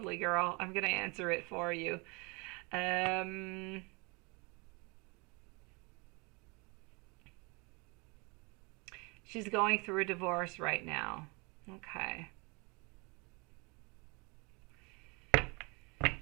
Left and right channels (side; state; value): left; quieter; 29.5 dB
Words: girl. I'm going to answer it for you. She's going through a divorce right now. Okay.